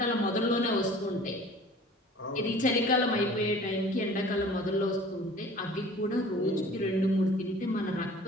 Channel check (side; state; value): both; normal; correlation 0.47